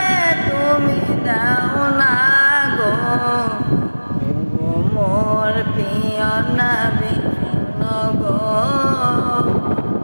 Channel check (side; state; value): both; inverted; correlation -1.00